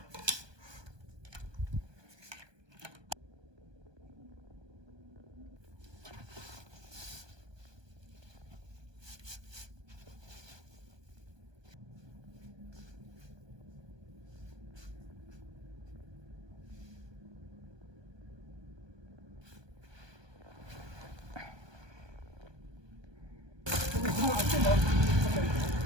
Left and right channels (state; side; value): late; left; 1.2 ms